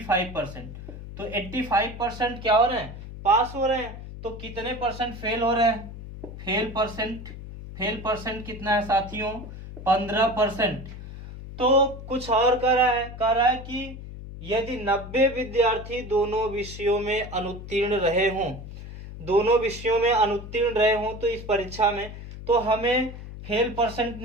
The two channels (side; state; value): left; noise; hum, 12 dB below the sound